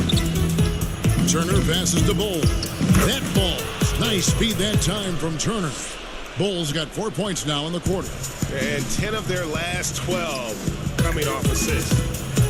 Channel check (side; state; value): both; identical; correlation 1.00